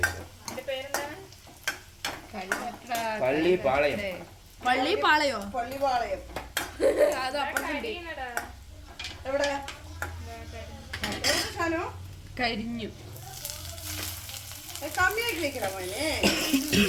പേരെന്താണ്? പള്ളിപ്പാളയം. പള്ളിപ്പാളയോ? പള്ളിപ്പാളയം. അത് അപ്പുറത്തുണ്ട്. എവിടെ സാധനം കരിഞ്ഞു. കമ്മിയാക്കി വെക്കണ മോനെ.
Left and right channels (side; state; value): both; identical; correlation 1.00